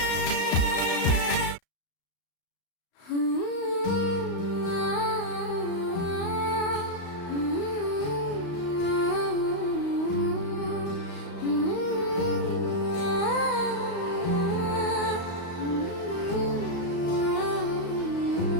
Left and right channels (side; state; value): right; late; 35 ms